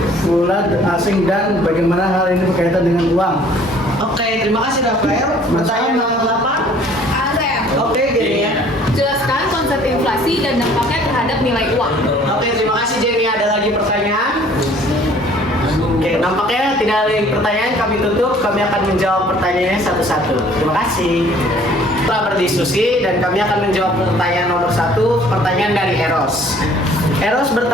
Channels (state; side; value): normal; both; correlation 0.55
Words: asing dan bagaimana hal ini berkaitan dengan uang? Oke, terima kasih Rafael. Pertanyaan nomor 8. Oke, gini ya. Jelaskan konsep inflasi dan dampaknya terhadap nilai uang. Oke, terima kasih Jenny. Ada lagi pertanyaan? Oke, nampaknya tidak ada lagi pertanyaan. Kami tutup. Kami akan menjawab pertanyaannya satu-satu. Terima kasih. Setelah berdiskusi dan kami akan menjawab pertanyaan nomor 1. Pertanyaan dari Eros. Eros